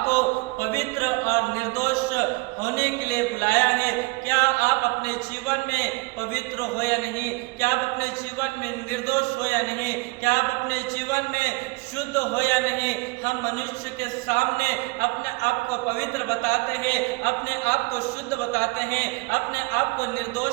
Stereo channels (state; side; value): quieter; left; 25.6 dB